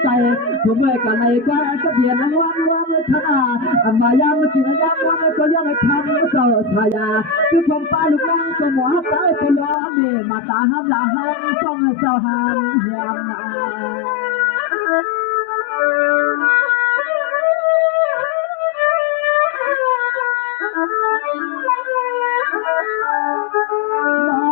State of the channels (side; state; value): right; drops out; at 9.8 s